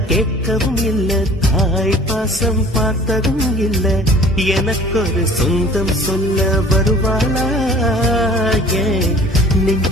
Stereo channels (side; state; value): both; normal; correlation 0.49